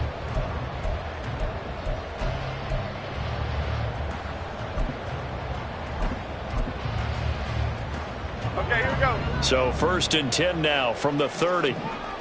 Okay, here we go. So 1st and 10 now from the 30.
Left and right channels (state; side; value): identical; both; correlation 1.00